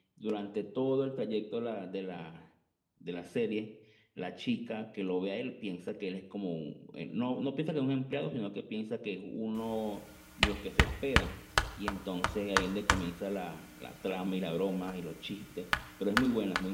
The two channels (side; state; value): both; identical; correlation 1.00